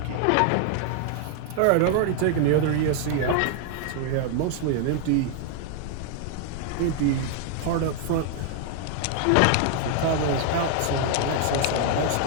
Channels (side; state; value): both; different; correlation 0.00